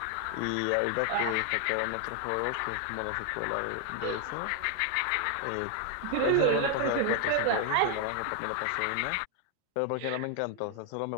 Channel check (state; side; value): different; both; correlation 0.00